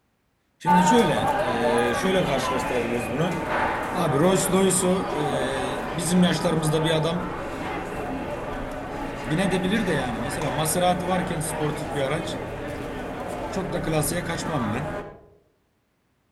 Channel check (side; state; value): both; identical; correlation 1.00